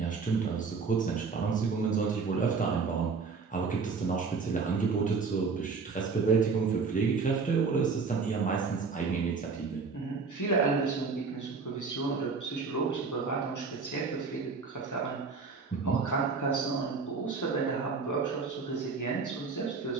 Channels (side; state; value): left; quieter; 4.8 dB